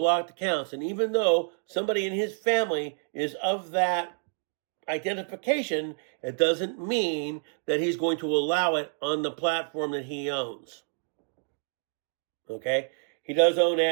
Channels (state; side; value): silent; left; digital silence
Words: accounts. And even though somebody in his family is of that identification, it doesn't mean that he's going to allow it on the platform that he owns. Okay? He does own